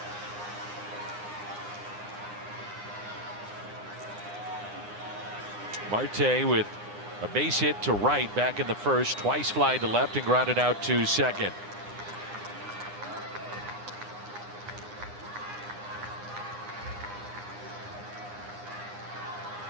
Marte with a base hit to right back in the first, twice fly to left and grounded out to second.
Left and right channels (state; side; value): late; left; 9.8 ms